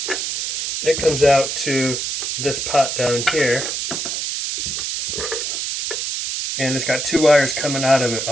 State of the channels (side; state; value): right; noise; hiss, 3 dB below the sound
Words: it comes out to this pot down here. And it's got two wires coming out of it.